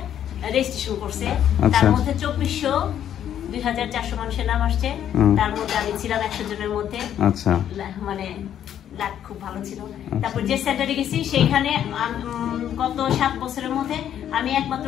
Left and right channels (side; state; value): right; quieter; 10.2 dB